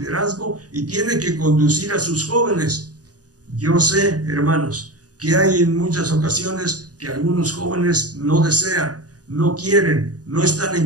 y tienen que conducir a sus jóvenes. Yo sé, hermanos, que hay en muchas ocasiones que algunos jóvenes no desean, no quieren, no están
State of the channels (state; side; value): late; left; 0.68 ms